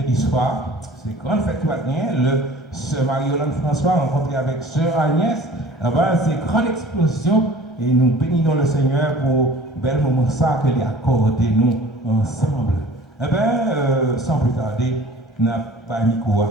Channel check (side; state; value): both; normal; correlation 0.46